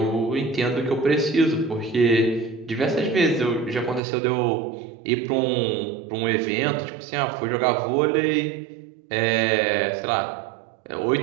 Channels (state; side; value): drops out; left; at 4.0 s